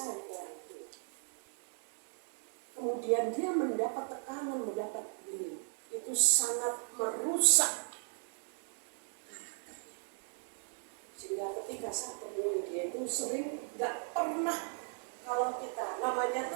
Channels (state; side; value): silent; left; 53 dB below the other